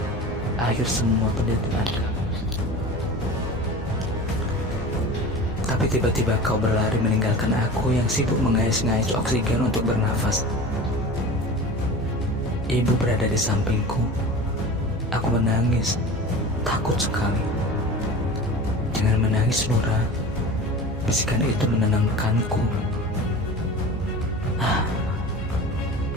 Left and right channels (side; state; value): both; normal; correlation 0.35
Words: akhir semua penderitaan kami. Tapi tiba-tiba kau berlari meninggalkan aku yang sibuk mengais-ngais oksigen untuk bernafas. Ibu berada di sampingku. Aku menangis, takut sekali. Jangan menangis, Nura. Bisikan itu menenangkanku.